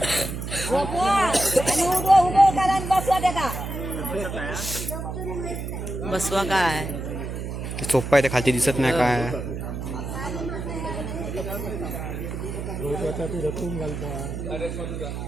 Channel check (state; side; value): noise; right; hum, 5 dB below the sound